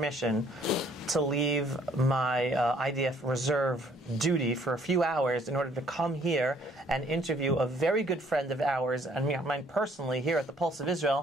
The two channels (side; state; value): both; normal; correlation 0.61